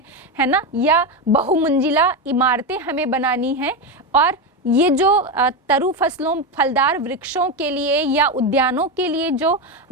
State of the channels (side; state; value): both; normal; correlation 0.13